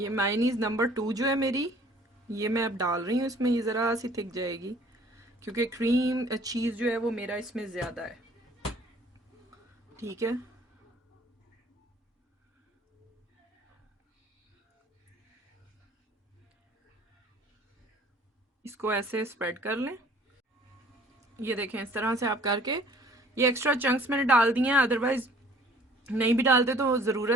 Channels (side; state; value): both; normal; correlation 0.53